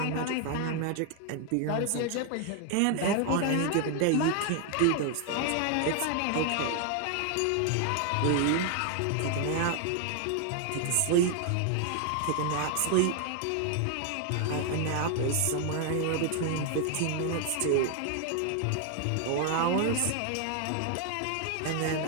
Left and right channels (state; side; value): different; both; correlation 0.00